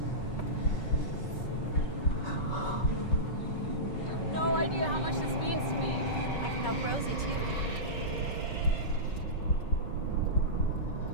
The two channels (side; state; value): right; late; 5.3 ms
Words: You have no idea how much this means to me. I can help Rosie too.